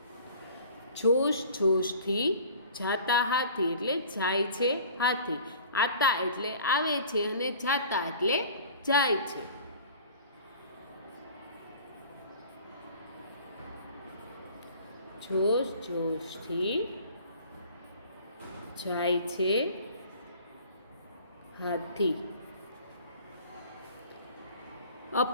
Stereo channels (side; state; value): both; inverted; correlation -0.46